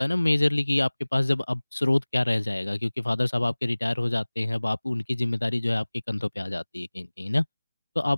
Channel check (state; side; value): inverted; both; correlation -1.00